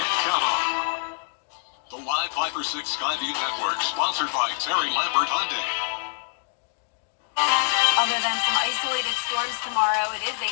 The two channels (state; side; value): silent; right; 61 dB below the other